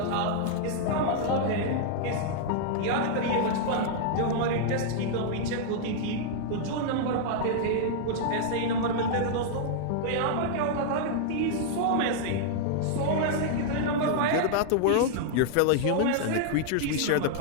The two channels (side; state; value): both; different; correlation -0.01